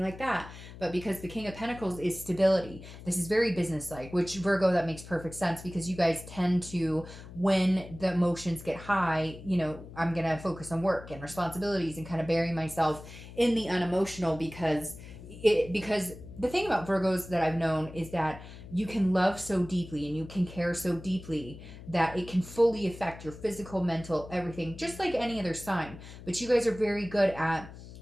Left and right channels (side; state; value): left; noise; hum, 15 dB below the sound